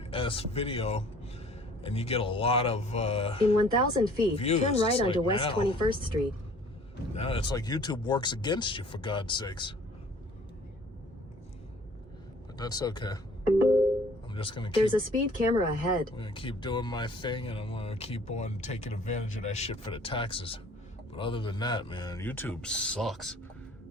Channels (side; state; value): both; normal; correlation 0.52